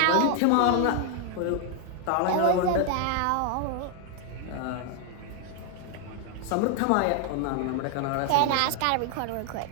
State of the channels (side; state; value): both; different; correlation 0.00